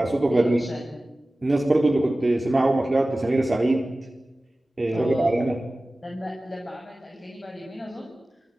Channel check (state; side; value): normal; both; correlation 0.97